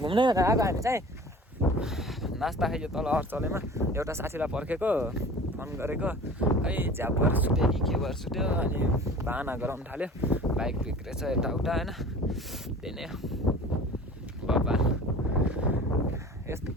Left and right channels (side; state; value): both; normal; correlation 0.41